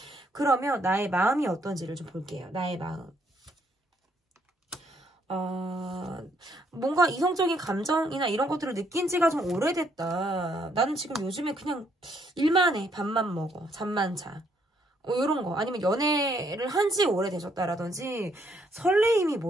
그러면 나의 마음이 어떤지를 좀 볼게요. 나의 마음. 뭔가 이성적인 감정이나 이런 것들을 느낀 지가 좀 오래됐다. 나는 지금 요즘에 그냥 일만 해. 밥만 먹어. 잠만 자. 이런 거. 아니면 연애를 한 지 오래되셨다라든지 설레임이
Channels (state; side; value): normal; both; correlation 0.71